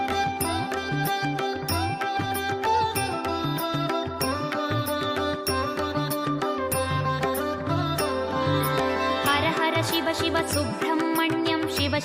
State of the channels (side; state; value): both; identical; correlation 1.00